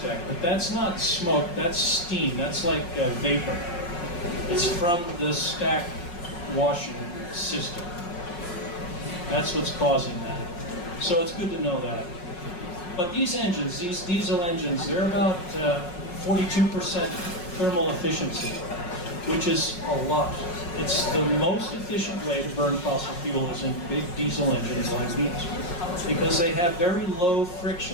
but that's not smoke, that's steam, that's like vapor. It's from the stack washing system. That's what's causing that. So it's good to know that. But these engines, these diesel engines, they're about 42% thermal efficiency, which is a lot. It's the most efficient way to burn fossil fuel is in big diesel engines like these, because they have very low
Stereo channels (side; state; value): right; late; 5.6 ms